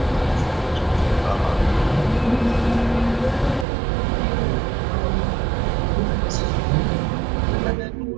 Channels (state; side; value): drops out; left; at 3.7 s